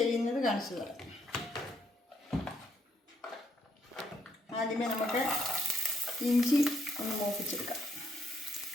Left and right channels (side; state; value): both; normal; correlation 0.72